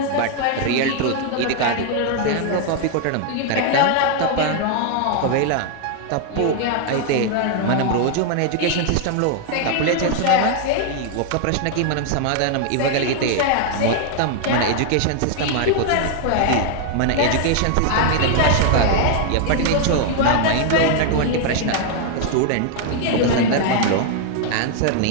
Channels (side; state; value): both; different; correlation 0.00